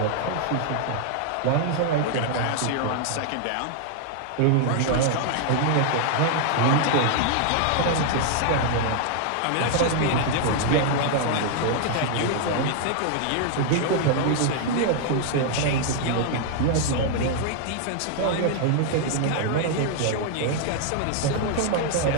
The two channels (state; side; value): different; both; correlation 0.00